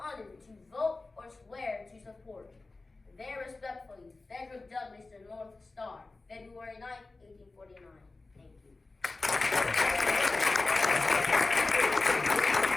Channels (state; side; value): quieter; right; 3.4 dB